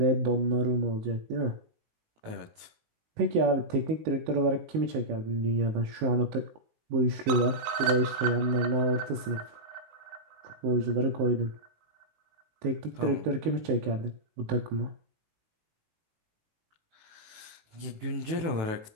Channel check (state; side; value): late; left; 19 ms